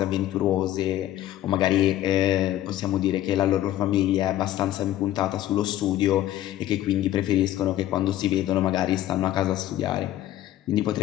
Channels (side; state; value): right; quieter; 13.5 dB